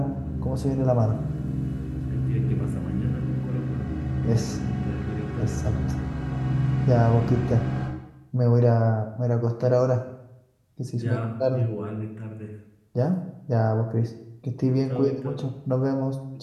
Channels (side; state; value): both; identical; correlation 1.00